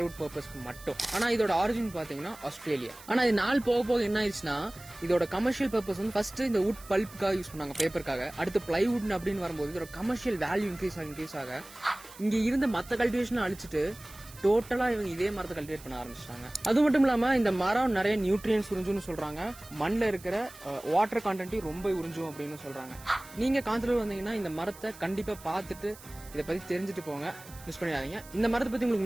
பர்பஸ்க்கு மட்டும். ஆனா இதோட ஆரிஜின் பாத்தீங்கன்னா ஆஸ்திரேலியா. ஆனா இது நாள் போக போக என்ன ஆயிடுச்சுன்னா, இதோட கமர்ஷியல் பர்பஸ் ஃபர்ஸ்ட் இந்த வுட் பல்ப்புக்காக யூஸ் பண்ணாங்க, பேப்பருக்காக. அடுத்து பிளைவுட் அப்படின்னு வரும்போது இதோட கமர்ஷியல் வேல்யூ இன்க்ரீஸ் ஆக இங்க இருந்த மத்த கல்டிவேஷன் அழிச்சிட்டு டோட்டலா இவங்க இதே மரத்தை கல்டிவேட் பண்ண ஆரம்பிச்சிட்டாங்க. அது மட்டும் இல்லாம இந்த மரம் நிறைய நியூட்ரியன்ஸ் உறிஞ்சும்னு சொல்றாங்க. மண்ணில் இருக்கிற வாட்டர் கண்டென்ட்டையும் ரொம்ப உறிஞ்சும் அப்படின்னு சொல்றாங்க. நீங்க காந்தலூர் வந்தீங்கன்னா இந்த மரத்தை கண்டிப்பா பார்த்துட்டு இதை பத்தி தெரிஞ்சுட்டு போங்க, மிஸ் பண்ணிடாதீங்க. இந்த மரத்தை பத்தி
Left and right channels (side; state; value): right; noise; hiss, 19 dB below the sound